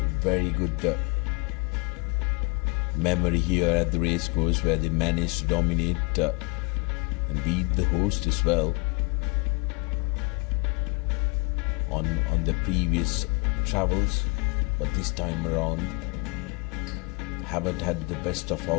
very good memory here at the racecourse, where they managed to dominate and beat the host as well on the previous travels, but this time around haven't had the best of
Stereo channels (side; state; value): right; quieter; 25.2 dB